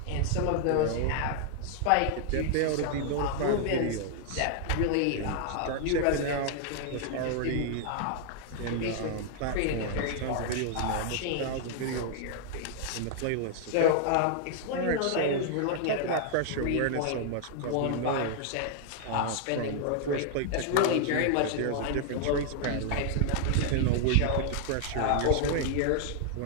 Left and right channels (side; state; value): both; different; correlation 0.00